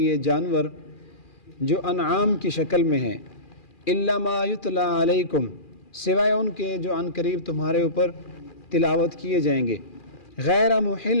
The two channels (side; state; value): right; late; 2.4 ms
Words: جانور جو انعام کی شکل میں ہیں، الا ما یتلی علیکم، سوائے ان کے جو عنقریب تمہارے اوپر تلاوت کیے جائیں گے، غیر